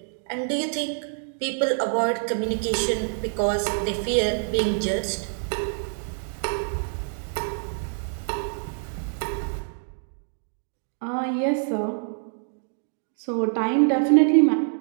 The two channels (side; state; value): left; silent; digital silence